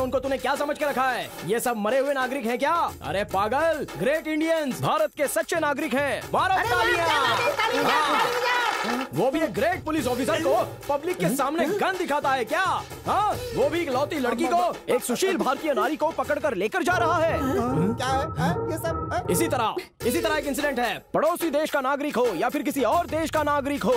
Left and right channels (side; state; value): both; identical; correlation 1.00